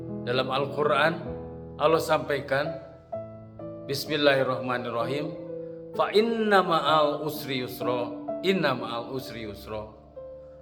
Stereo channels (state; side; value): identical; both; correlation 1.00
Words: dalam Al-Quran, Allah sampaikan, Bismillahirrahmanirrahim, fa inna ma'al usri yusra, inna ma'al usri yusra.